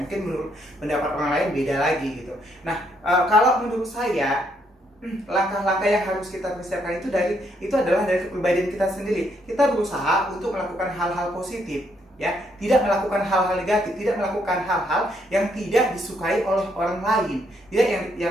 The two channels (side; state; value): both; normal; correlation 0.73